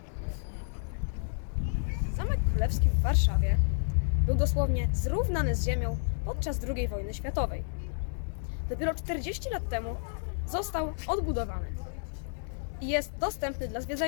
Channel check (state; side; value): silent; right; digital silence